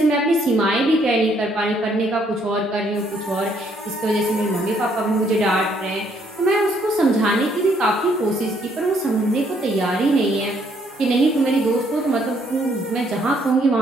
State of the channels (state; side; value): normal; both; correlation 0.68